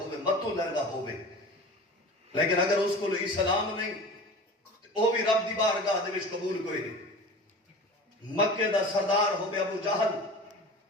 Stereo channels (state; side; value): normal; both; correlation 0.36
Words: متو لیندا ہووے لیکن اگر اس کو اسلام نہیں او بھی رب دی بارگاہ دے وچ قبول کوئی نہیں. مکے دا سردار ہووے ابو جہل